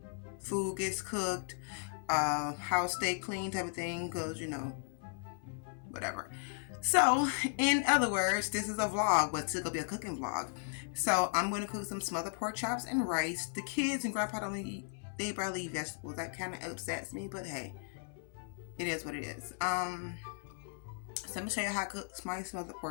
food gets cooked, house stay clean type of thing, because whatever. So in other words, this is a vlog, but it's gonna be a cooking vlog. So I'm going to cook some smothered pork chops and rice. The kids and grandpa don't eat, they barely eat vegetables. That kind of upsets me, but hey, it is what it is. So I'm gonna show you how to cook my smothered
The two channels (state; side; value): silent; right; 54 dB below the other